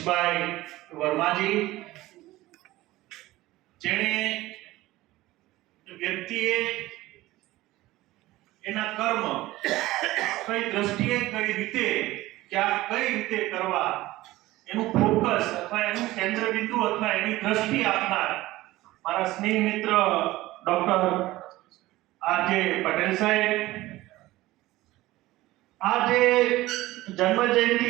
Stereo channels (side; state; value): left; quieter; 17.7 dB